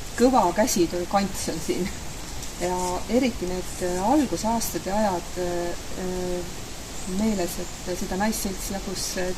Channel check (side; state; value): both; identical; correlation 1.00